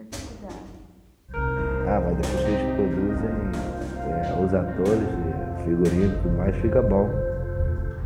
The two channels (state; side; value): identical; both; correlation 1.00